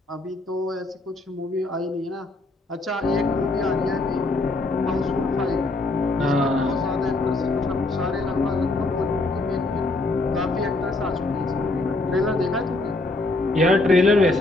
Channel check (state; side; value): quieter; right; 3.0 dB